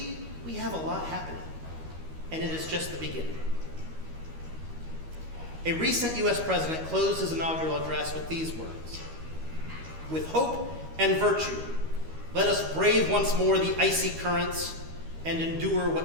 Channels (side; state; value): left; late; 13 ms